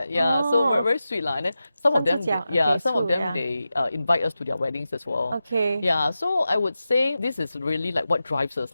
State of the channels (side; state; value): both; inverted; correlation -0.92